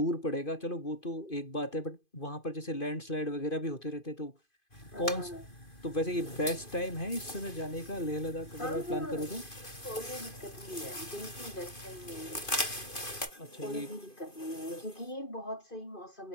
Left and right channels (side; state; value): right; late; 2.5 ms